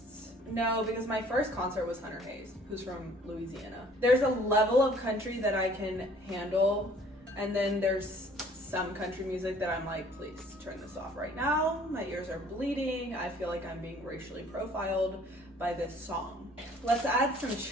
No, because my first concert was Hunter Hayes, who's from Louisiana. There's a level of country that I can handle, and then there's some country music that I'm like, please turn this off right now. My ears are bleeding. I feel like I'm being racially profiled by this song. Let's add some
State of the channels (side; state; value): both; normal; correlation 0.55